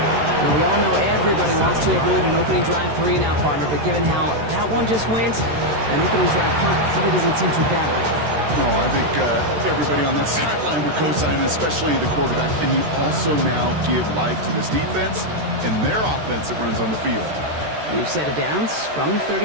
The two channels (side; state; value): left; late; 13 ms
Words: Now, we all know everybody wants to avoid an opening drive 3-and-out, partner, but given how that one just went, an opening drive punt probably doesn't seem too bad right now. No, I think everybody on that sideline would co-sign, especially the quarterback. And you also now give life to this defense and their offense that runs on the field. We've set it down from